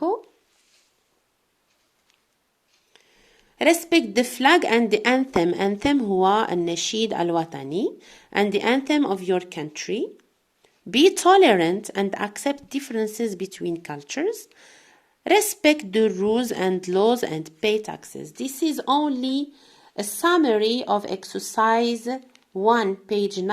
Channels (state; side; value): identical; both; correlation 1.00